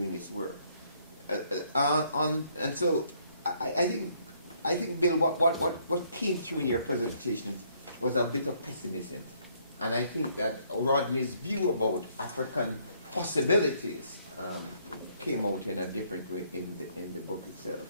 its work. And so I think, Bill, what came through in your presentation was a bit of pessimism, and I think that Rodney's view about African possibilities came out in a different way in the book itself.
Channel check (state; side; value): inverted; both; correlation -0.67